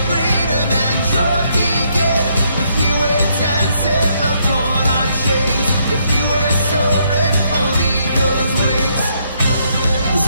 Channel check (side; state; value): both; inverted; correlation -0.72